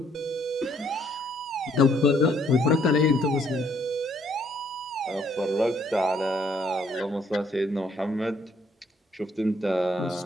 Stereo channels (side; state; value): both; normal; correlation 0.67